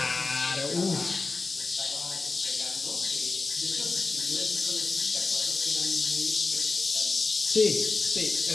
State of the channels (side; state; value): right; quieter; 3.7 dB